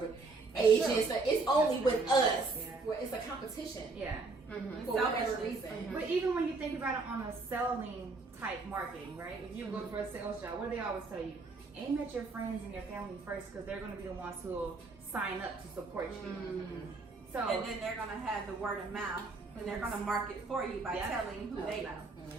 Asians, so it's only with us where it's a competition. Yeah. Mm-hmm. For whatever Selfishness. reason. But even when you think about it on a selling type marketing, right? If you go for a sales job, what do they always tell you? Aim at your friends and your family first because they're going to be the ones who will sign up to support you. So, And then they're gonna have the word of mouth, and they're gonna market for you by telling who they know.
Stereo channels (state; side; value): quieter; left; 3.8 dB